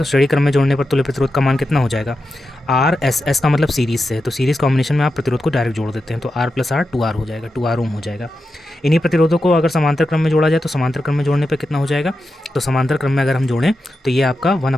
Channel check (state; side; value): normal; both; correlation 0.89